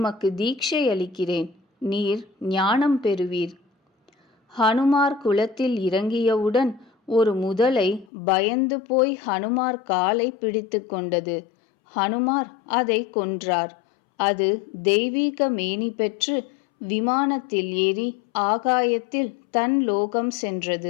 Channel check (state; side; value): drops out; right; at 8.1 s